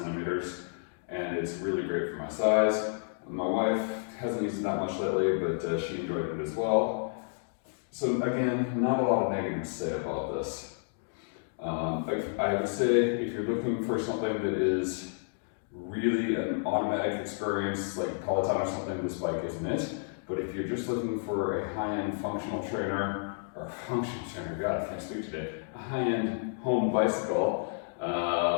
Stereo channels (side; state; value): right; silent; digital silence